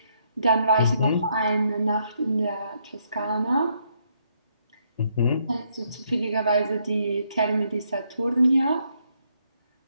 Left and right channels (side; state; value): both; inverted; correlation -0.73